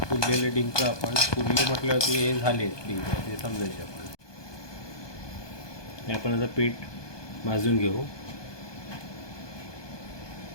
फुललेले डिंक आपण फुलले म्हटल्यावरती हे झाले डिंक ते समजायचे. आपण आता पीठ भाजून घेऊ.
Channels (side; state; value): right; late; 1.2 ms